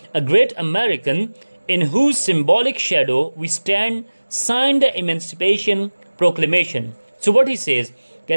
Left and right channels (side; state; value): both; inverted; correlation -1.00